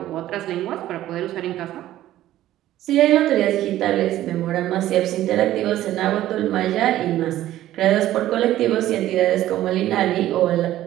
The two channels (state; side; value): quieter; left; 13.8 dB